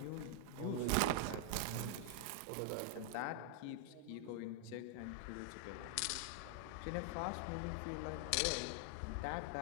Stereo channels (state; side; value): different; both; correlation 0.00